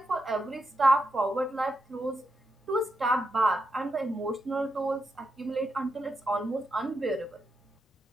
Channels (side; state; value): both; normal; correlation 0.84